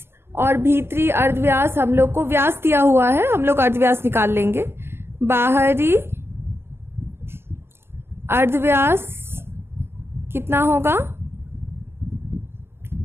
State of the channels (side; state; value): left; late; 0.12 ms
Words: और भीतरी अर्धव्यास, हम लोग को व्यास दिया हुआ है, हम लोग अर्धव्यास निकाल लेंगे। बाहरी अर्धव्यास कितना होगा,